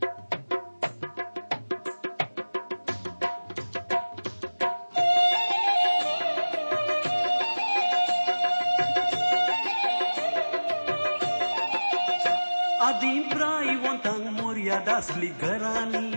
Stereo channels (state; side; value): inverted; both; correlation -1.00